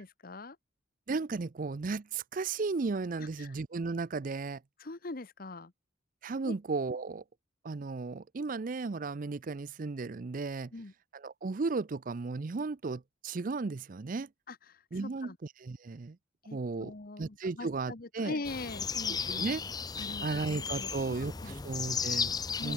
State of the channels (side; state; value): both; normal; correlation 0.41